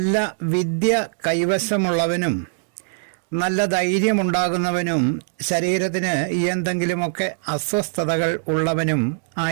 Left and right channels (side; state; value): left; silent; digital silence